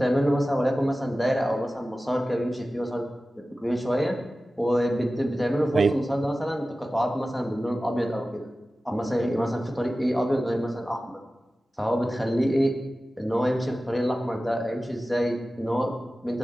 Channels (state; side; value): normal; both; correlation 0.95